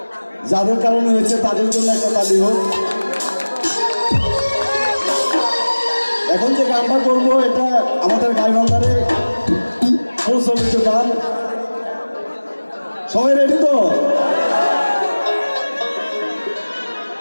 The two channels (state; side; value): inverted; both; correlation -1.00